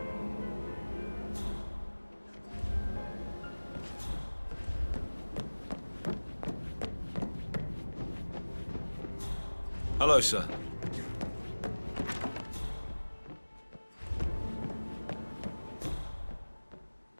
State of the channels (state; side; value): inverted; both; correlation -1.00